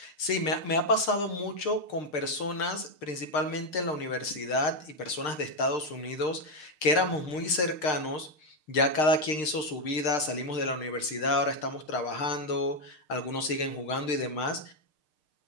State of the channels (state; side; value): late; right; 6.6 ms